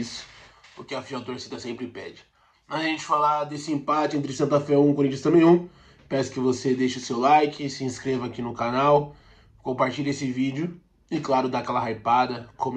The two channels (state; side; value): identical; both; correlation 1.00